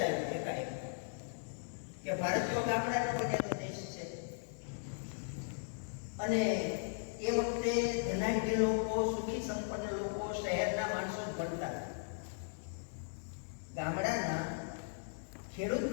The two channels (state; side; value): silent; right; 53 dB below the other